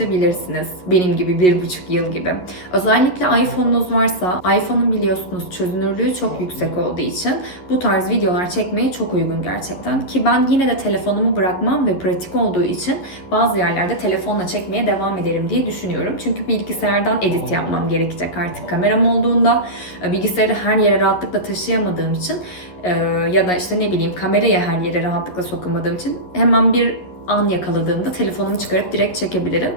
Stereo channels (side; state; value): right; late; 11 ms